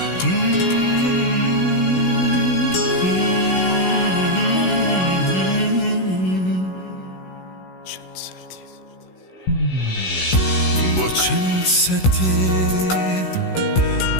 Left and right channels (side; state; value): right; late; 16 ms